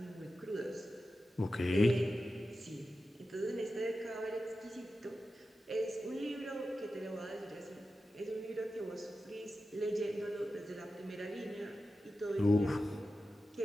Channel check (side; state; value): both; normal; correlation 0.92